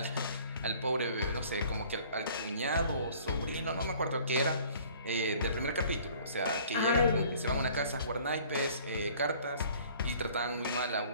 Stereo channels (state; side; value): inverted; both; correlation -0.52